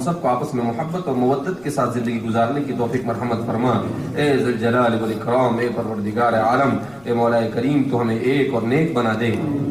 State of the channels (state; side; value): noise; left; rumble, 28 dB below the sound